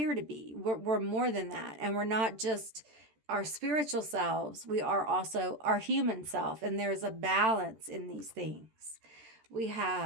to be. We're more than that. And we're not just our spiritual selves, we are also our human self, and there's a balance in these things. We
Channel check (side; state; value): left; late; 13 ms